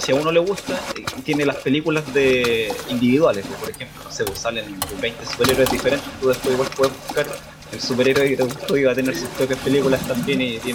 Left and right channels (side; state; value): both; identical; correlation 1.00